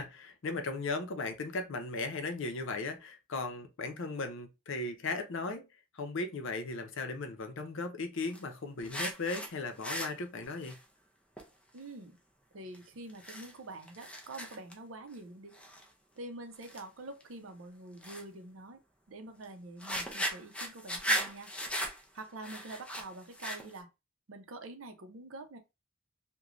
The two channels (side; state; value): both; normal; correlation 0.13